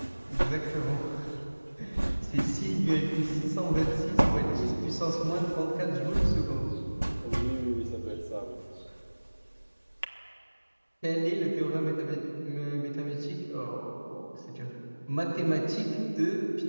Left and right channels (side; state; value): both; inverted; correlation -1.00